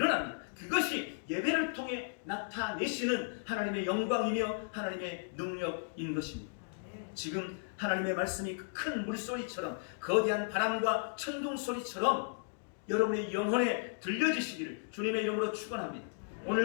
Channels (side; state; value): right; silent; digital silence